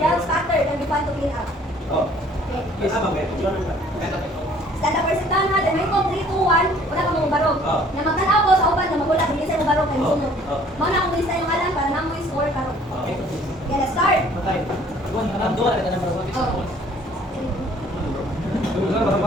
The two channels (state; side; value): normal; both; correlation 0.56